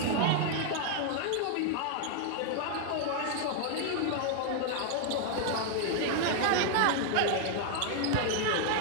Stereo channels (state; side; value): different; both; correlation 0.00